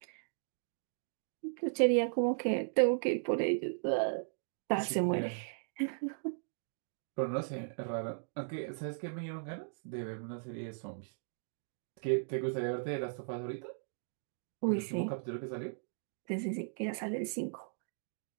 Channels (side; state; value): left; silent; digital silence